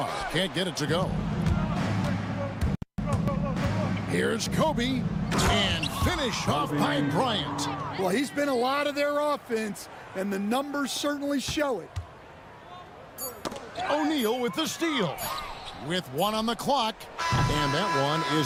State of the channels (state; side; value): identical; both; correlation 1.00